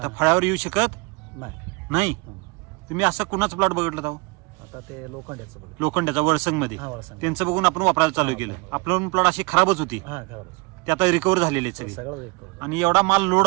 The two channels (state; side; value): quieter; left; 27.5 dB